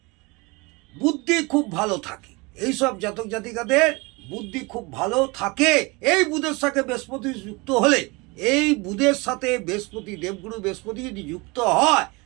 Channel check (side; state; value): left; quieter; 26.3 dB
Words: বুদ্ধি খুব ভালো থাকে। এইসব জাতক জাতিকাদের বুদ্ধি খুব ভালো থাকে। এই বুধের সাথে বৃহস্পতি যুক্ত হলে, এই বুধের সাথে বৃহস্পতি, দেবগুরু বৃহস্পতি যদি যুক্ত হয়